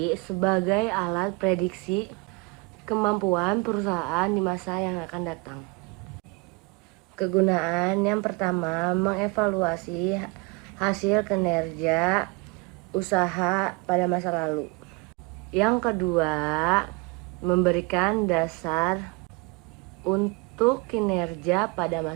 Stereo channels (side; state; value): left; quieter; 28.4 dB